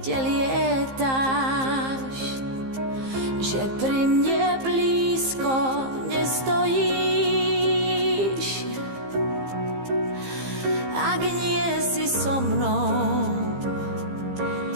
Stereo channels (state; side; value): late; left; 15 ms